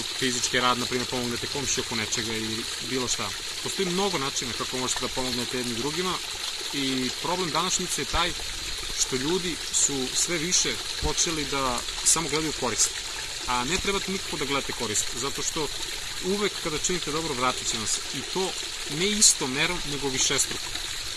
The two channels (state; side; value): identical; both; correlation 1.00